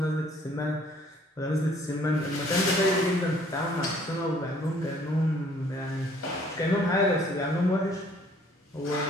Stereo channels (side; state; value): both; normal; correlation 0.59